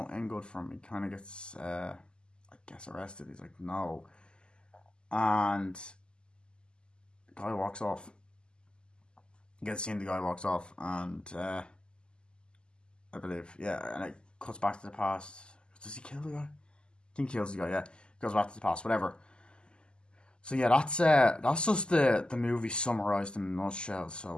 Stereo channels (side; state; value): right; late; 0.049 ms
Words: end good for him. He kind of gets, I guess, arrested. He's like, no. And the guy walks off. You get to see the guy walks off. And I believe, yeah. And it cuts back to the past. Does he kill the guy? I think he kills the guy, yeah. Goes back to the past, whatever. So yeah, that's just the movie summarised in a nutshell.